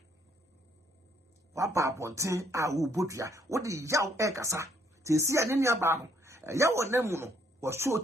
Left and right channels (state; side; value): normal; both; correlation 0.68